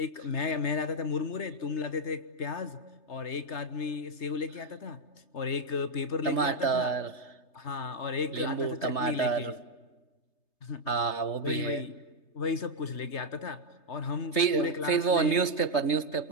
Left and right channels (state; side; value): late; right; 3.3 ms